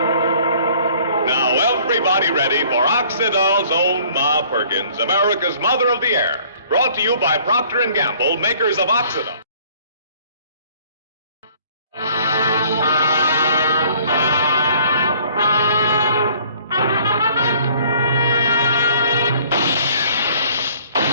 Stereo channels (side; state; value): both; inverted; correlation -0.56